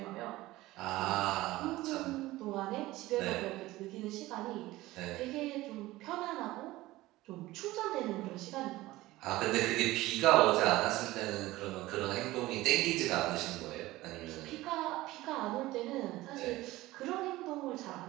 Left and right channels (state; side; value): quieter; left; 17.9 dB